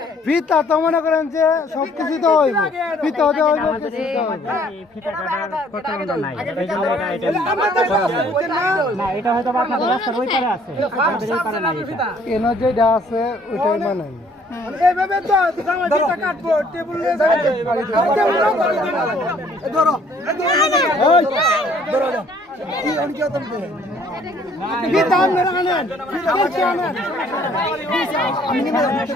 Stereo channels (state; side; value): normal; both; correlation 0.60